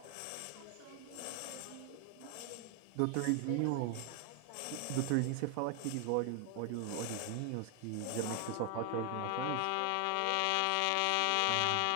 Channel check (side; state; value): both; different; correlation 0.00